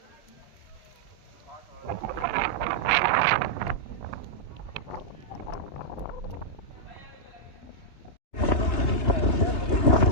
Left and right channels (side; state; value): right; late; 3.1 ms